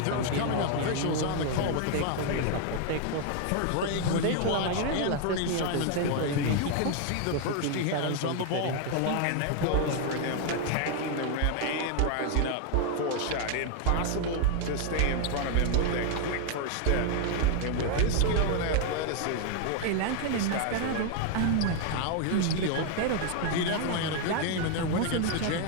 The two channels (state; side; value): different; both; correlation 0.00